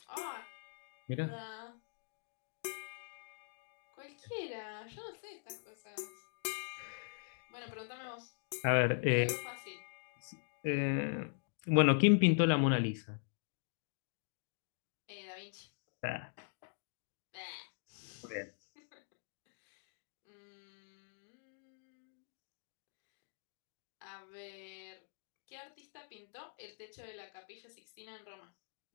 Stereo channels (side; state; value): right; silent; digital silence